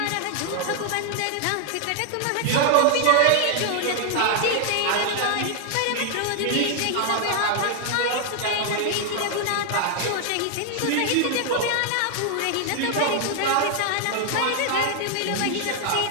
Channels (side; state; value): both; different; correlation 0.00